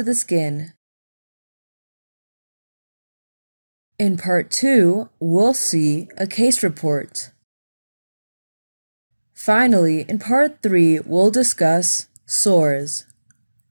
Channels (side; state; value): both; inverted; correlation -1.00